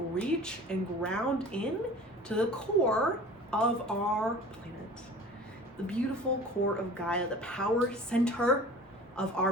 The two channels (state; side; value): normal; both; correlation 0.42